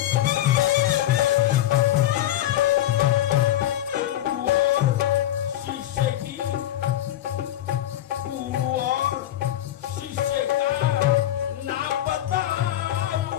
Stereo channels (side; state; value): right; quieter; 12.9 dB